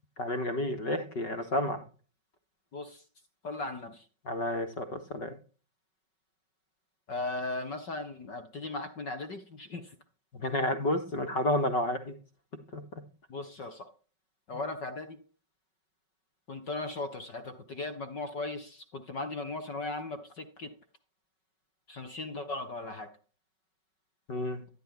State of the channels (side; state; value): right; late; 5.4 ms